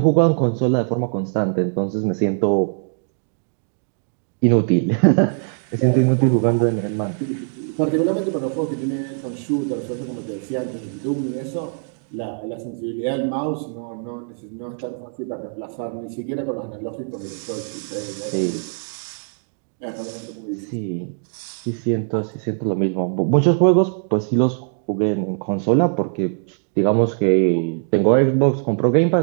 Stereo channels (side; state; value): left; silent; digital silence